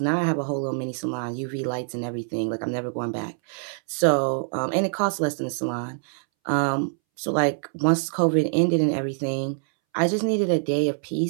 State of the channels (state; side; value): silent; left; 62 dB below the other